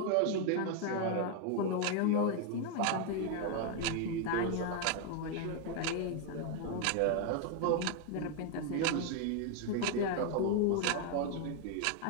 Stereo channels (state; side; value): different; both; correlation 0.01